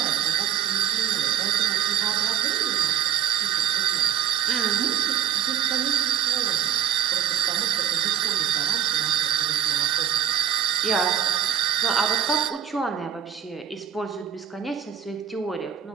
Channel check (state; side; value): quieter; left; 9.5 dB